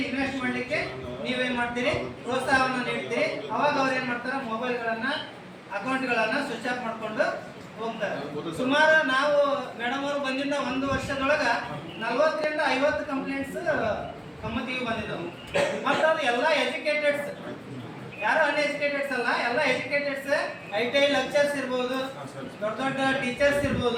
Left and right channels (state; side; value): identical; both; correlation 1.00